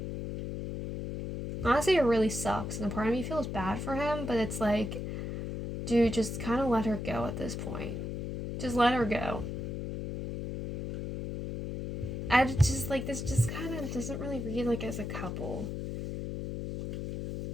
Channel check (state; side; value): noise; left; hum, 5 dB below the sound